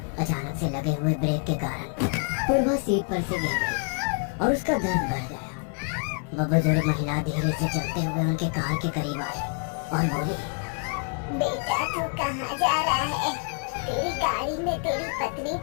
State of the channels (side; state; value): right; quieter; 36.9 dB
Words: अचानक से लगे हुए ब्रेक के कारण पूर्वा सीट पर से गिर गई और उसका दर्द बढ़ गया। वह बुजुर्ग महिला धीरे से चलते हुए उनके कार के करीब आई और बोली, बेटा तू कहाँ जा रहा है? तेरी गाड़ी में तेरी पत्नी